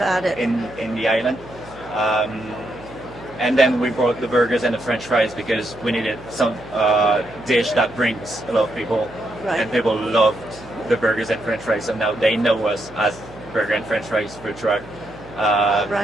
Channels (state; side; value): noise; right; hum, 21 dB below the sound